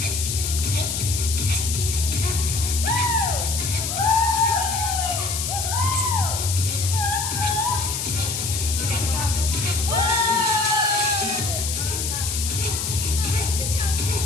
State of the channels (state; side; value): noise; left; hiss, 2 dB below the sound